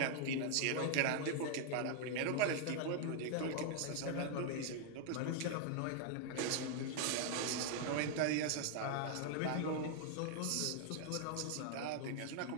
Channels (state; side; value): different; both; correlation 0.00